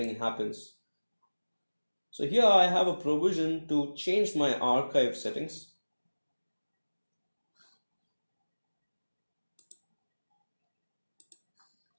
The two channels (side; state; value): both; inverted; correlation -1.00